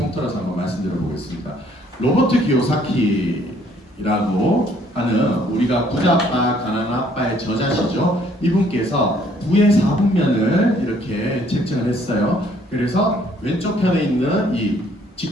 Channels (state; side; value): normal; both; correlation 0.63